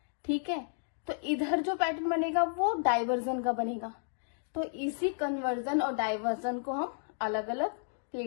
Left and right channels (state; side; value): silent; right; digital silence